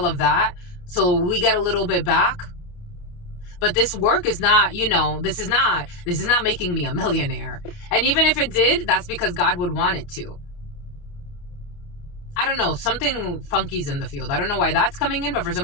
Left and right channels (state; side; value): late; right; 29 ms